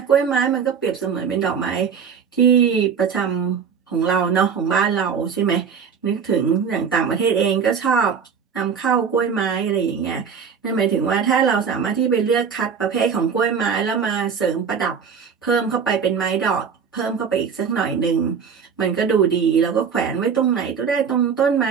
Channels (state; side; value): quieter; left; 6.6 dB